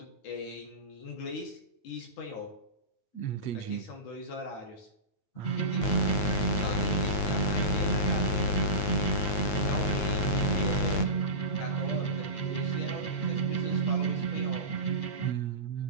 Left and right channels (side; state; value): right; late; 9.5 ms